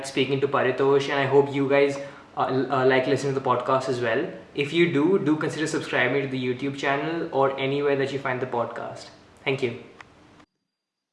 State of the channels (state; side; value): identical; both; correlation 1.00